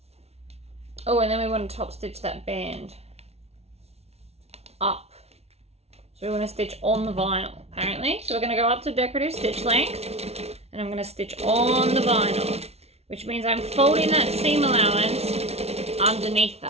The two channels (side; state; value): left; late; 0.31 ms